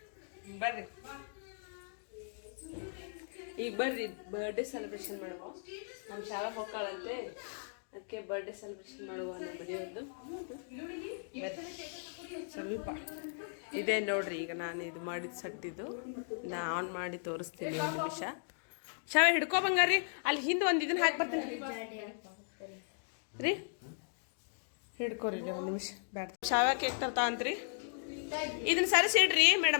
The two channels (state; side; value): silent; right; digital silence